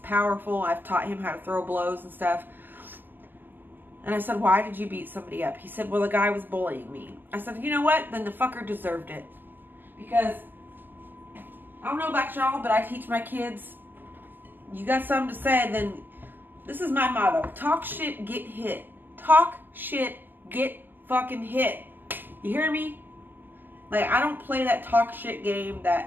I've taught him how to throw blows and stuff. And I said, why did you beat somebody up? He said, well, the guy was bullying me. I said, you know what? Then the fucker deserved it. Because, I don't know about y'all, but I teach my kids, you got something to say, then this is my motto. Talk shit, get hit. Talk shit, get fucking hit. You hear me? Like, I don't play that talk shit game,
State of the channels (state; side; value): late; left; 0.089 ms